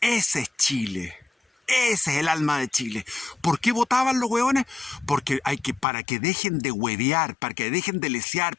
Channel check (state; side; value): drops out; right; at 5.9 s